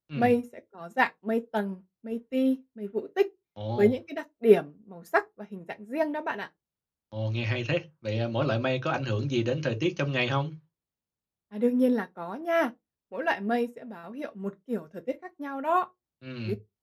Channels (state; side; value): identical; both; correlation 1.00